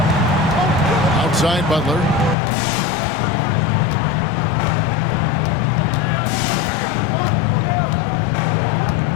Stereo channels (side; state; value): right; drops out; at 2.4 s